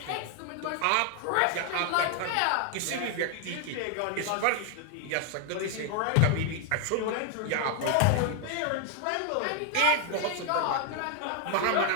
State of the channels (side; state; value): both; different; correlation 0.00